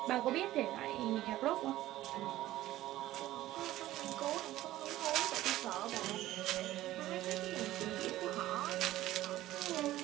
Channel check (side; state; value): left; quieter; 15.2 dB